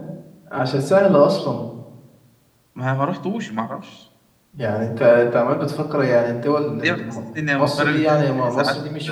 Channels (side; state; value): both; identical; correlation 1.00